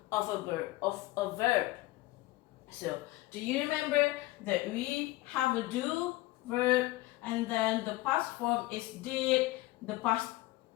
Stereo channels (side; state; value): right; quieter; 19.0 dB